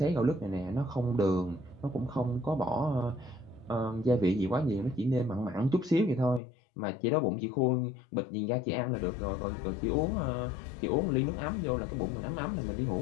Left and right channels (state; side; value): drops out; right; at 6.4 s